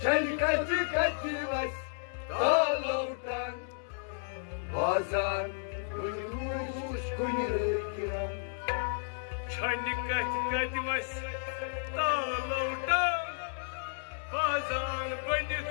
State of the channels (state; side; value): silent; right; digital silence